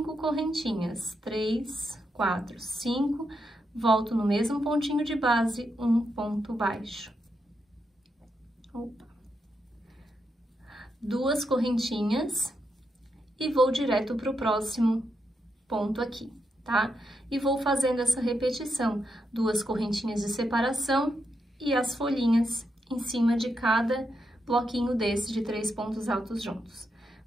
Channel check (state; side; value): normal; both; correlation 0.83